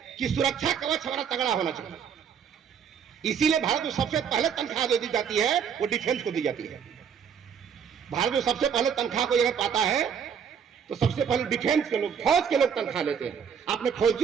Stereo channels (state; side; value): quieter; left; 7.4 dB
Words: कि सुरक्षा कवच हमारा तगड़ा होना चाहिए। इसीलिए भारत में सबसे पहले तनख्वाह जो दी जाती है वो डिफेंस को दी जाती है। भारत में सबसे पहले तनख्वाह को अगर पाता है तो सबसे पहले डिफेंस के लोग, फौज के लोग तनख्वाह लेते हैं। आपने